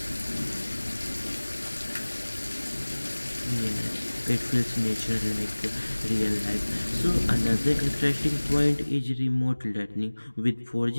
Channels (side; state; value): both; inverted; correlation -1.00